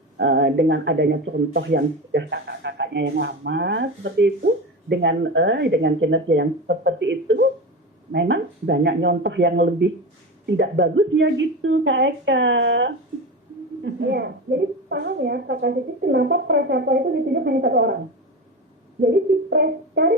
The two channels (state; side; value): normal; both; correlation 0.24